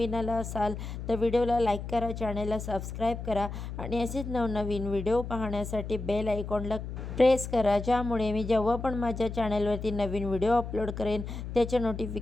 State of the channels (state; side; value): noise; left; hum, 7 dB below the sound